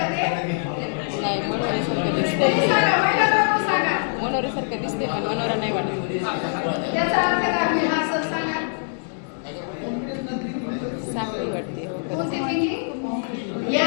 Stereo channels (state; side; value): silent; right; digital silence